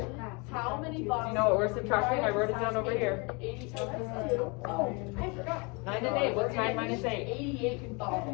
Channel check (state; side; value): quieter; right; 30.4 dB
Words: how many Do boxes? you know what we're subtracting? I wrote it down over here. 80 times 2. Oh, I forgot. 9 and 8. What's 9 minus 8? 88